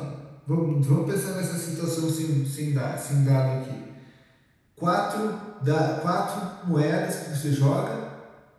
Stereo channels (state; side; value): identical; both; correlation 1.00